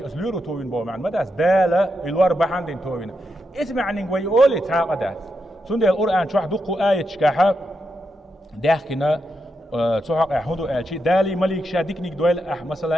أسليورو توين بو معن مداس دالا الوار بحندين توين اسمع نقوي أولي تاقدات سندي القرآن شو حدقوا آية شكاحة داخلنا تحق أحمدو آلشي دالي مليك شاديك نيك دويل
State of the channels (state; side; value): normal; both; correlation 0.85